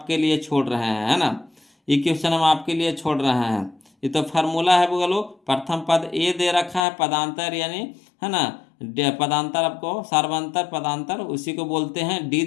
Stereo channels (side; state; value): right; drops out; at 6.8 s